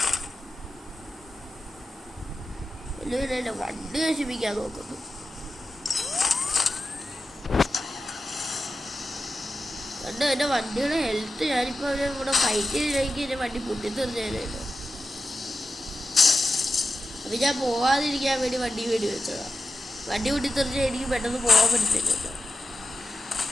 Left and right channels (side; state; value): both; normal; correlation 0.91